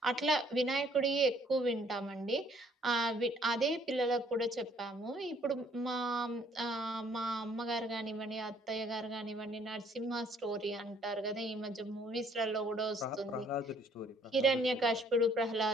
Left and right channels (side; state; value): both; normal; correlation 0.62